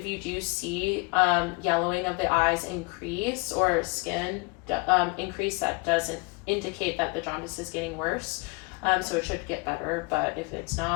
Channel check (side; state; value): right; quieter; 29.7 dB